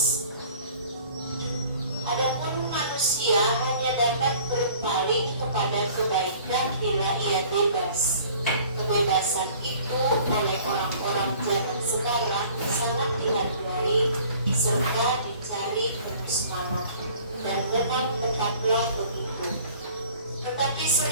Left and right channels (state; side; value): inverted; both; correlation -0.51